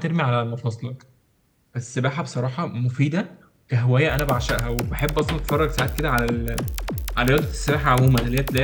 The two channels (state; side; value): identical; both; correlation 1.00